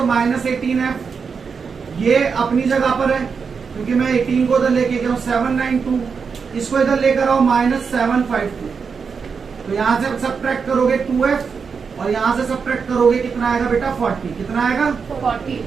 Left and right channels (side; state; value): left; quieter; 5.7 dB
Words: माइनस 18f। ये अपनी जगह पर है क्योंकि मैं 18 को उधर लेके गया हूँ 792, इसको इधर लेकर आओ माइनस 752। तो यहाँ से सब्ट्रैक्ट करोगे 2f और यहाँ से सब्ट्रैक्ट करोगे कितना आएगा बेटा 40। कितना आएगा 40।